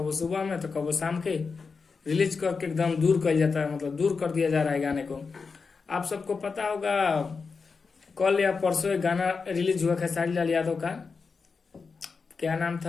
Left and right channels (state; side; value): quieter; right; 4.9 dB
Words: सुबह में तो कबो शाम के रिलीज करके एकदम दूर कर जाता है, मतलब दूर कर दिया जा रहा है गाने को। आप सबको पता होगा कल या परसों एक गाना रिलीज हुआ खेसारी लाल यादव का, क्या नाम